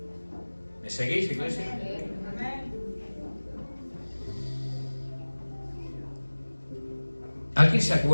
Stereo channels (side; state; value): both; inverted; correlation -1.00